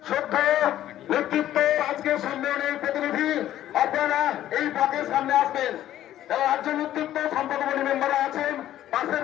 শুদ্ধ নেতৃত্ব আজকে সম্মেলনের প্রতিনিধি আপনারা এই ব্লকের সামনে আসবেন। যারা রাজ্য নেতৃত্ব সম্পাদক মেম্বাররা আছেন পাশের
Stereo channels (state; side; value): quieter; right; 12.6 dB